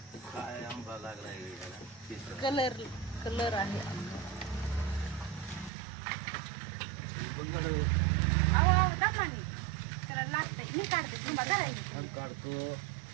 काय आंबा लागलाय. कलर कलर आहे. अहो दमाने त्याला लागतंय. मी काढते तुम्हा धरायचं. काढतो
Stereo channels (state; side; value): drops out; left; at 5.7 s